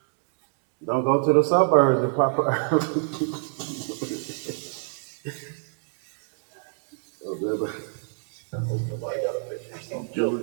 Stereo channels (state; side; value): silent; left; 59 dB below the other